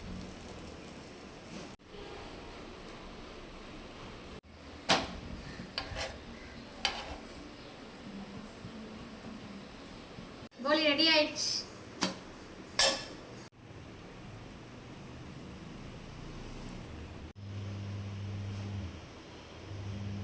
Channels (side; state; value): both; identical; correlation 1.00